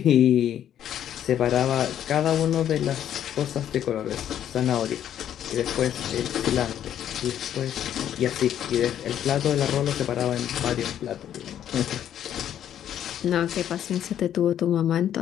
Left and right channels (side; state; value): right; quieter; 10.4 dB